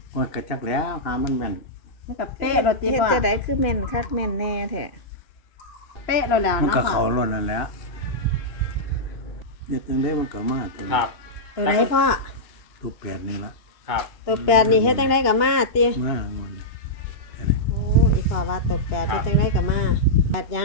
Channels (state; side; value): late; right; 2.8 ms